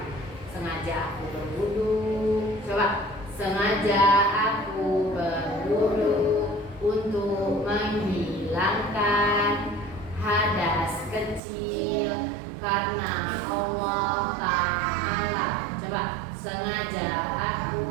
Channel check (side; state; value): left; drops out; at 11.4 s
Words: Sengaja aku berwudu. Coba, sengaja aku berwudu untuk menghilangkan hadas kecil karena Allah Ta'ala. Coba, sengaja aku